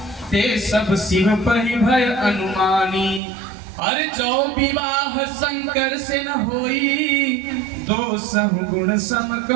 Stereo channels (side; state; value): left; drops out; at 3.2 s